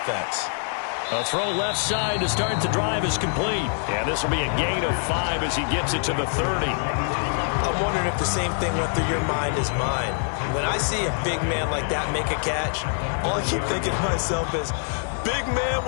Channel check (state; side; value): silent; right; 58 dB below the other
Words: A throw left side to start the drive is complete. And this will be a gain of 5 as he gets it to the 30. I'm wondering if the same thing went through your mind as mine. When I see a big man like that make a catch, all I keep thinking to myself is, big man